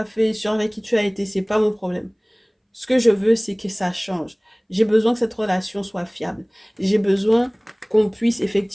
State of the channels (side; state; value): both; identical; correlation 1.00